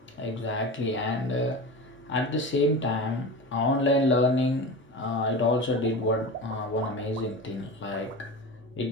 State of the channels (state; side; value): normal; both; correlation 0.28